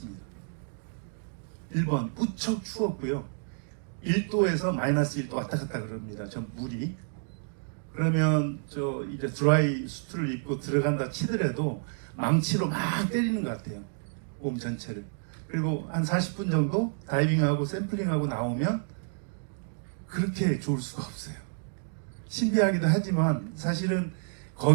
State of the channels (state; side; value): silent; left; digital silence